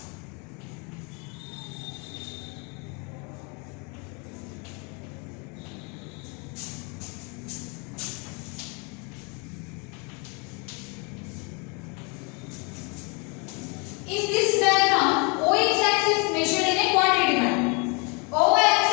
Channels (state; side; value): quieter; right; 32.6 dB